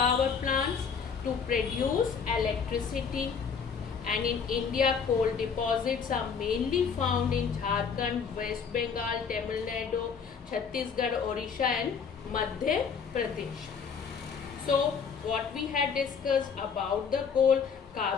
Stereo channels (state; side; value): quieter; right; 6.2 dB